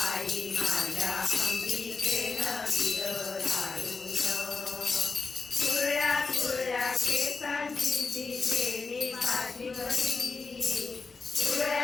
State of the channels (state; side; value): quieter; right; 4.4 dB